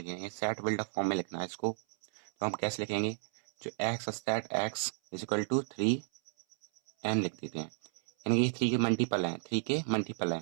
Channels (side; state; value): left; silent; 56 dB below the other